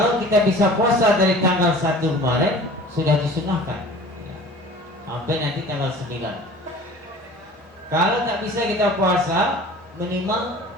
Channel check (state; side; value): normal; both; correlation 0.43